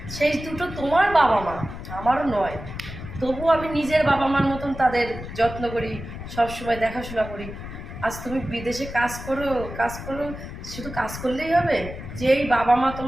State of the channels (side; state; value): left; noise; rumble, 10 dB below the sound